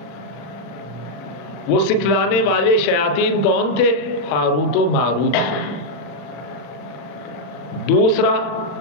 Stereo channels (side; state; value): right; late; 40 ms